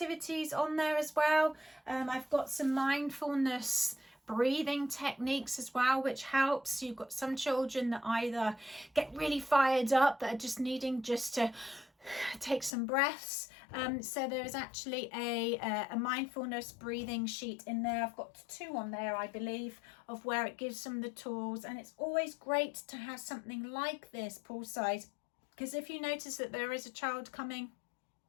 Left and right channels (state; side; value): drops out; right; at 12.7 s